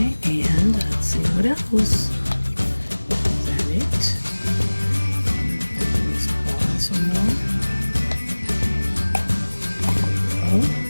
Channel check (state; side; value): inverted; both; correlation -1.00